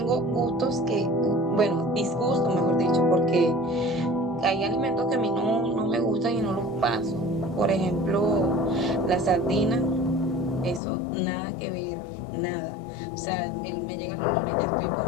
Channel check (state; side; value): drops out; right; at 10.8 s